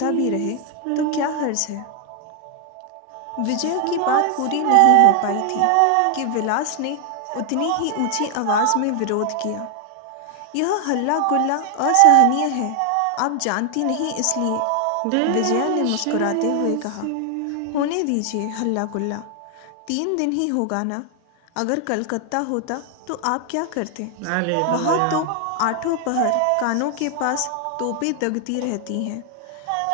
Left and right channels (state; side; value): different; both; correlation 0.00